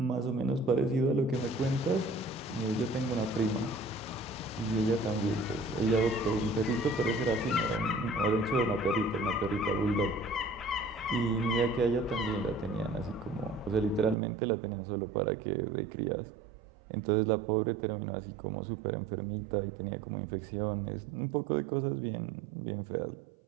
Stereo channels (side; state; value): left; drops out; at 14.2 s